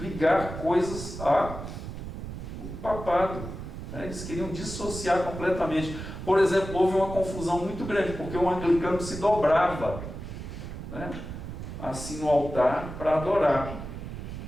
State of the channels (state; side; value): noise; right; rumble, 9 dB below the sound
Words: coisas ao papado. Né? Eles queriam dissociar completamente. Por exemplo, houve uma confusão muito grande, porque o anglicano se dobrava, né, assim no altar para adorar.